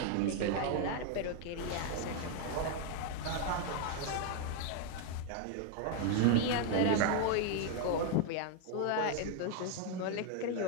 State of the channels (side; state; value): both; different; correlation 0.00